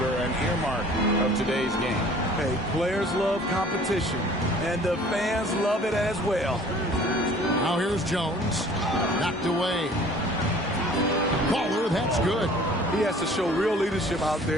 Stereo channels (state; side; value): normal; both; correlation 0.51